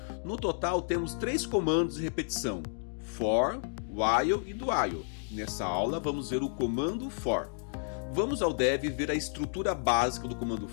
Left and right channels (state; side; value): silent; right; digital silence